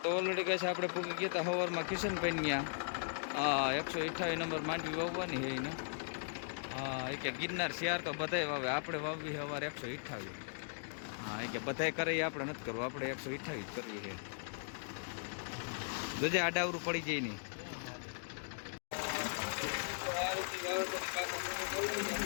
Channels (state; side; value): silent; right; digital silence